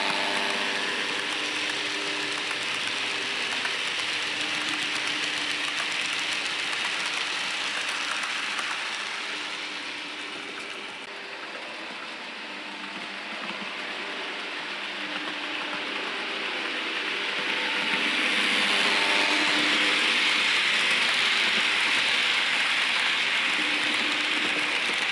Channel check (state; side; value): identical; both; correlation 1.00